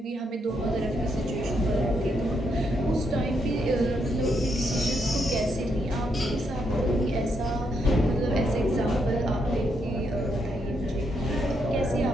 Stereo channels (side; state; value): both; normal; correlation 0.78